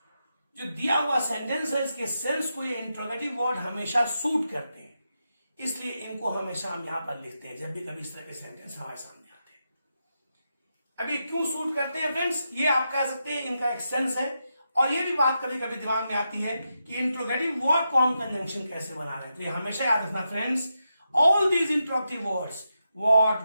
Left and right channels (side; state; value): both; inverted; correlation -0.86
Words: जो दिया हुआ सेंटेंस है, इसके sense को ये interrogative word हमेशा suit करते हैं, इसलिए इनको हमेशा हम यहां पर लिखते हैं जब भी कभी इस तरह के सेंटेंस हमारे सामने आते हैं. अभी क्यों सूट करते हैं फ्रेंड्स, ये आप कह सकते हैं इनका एक सेंस है. और ये भी बात कभी कभी दिमाग में आती है कि इंट्रोगेटिव वर्ड को हम कंजंक्शन कैसे बना रहे हैं. तो ये हमेशा याद रखना friends, all these interrogative words, what,